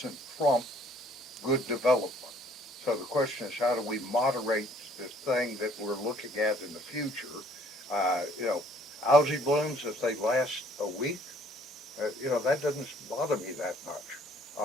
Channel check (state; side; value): normal; both; correlation 0.60